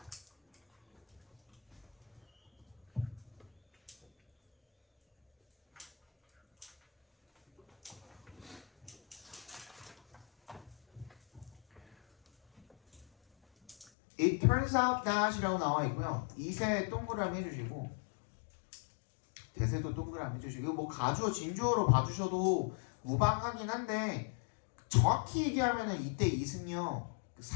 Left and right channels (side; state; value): right; drops out; at 13.9 s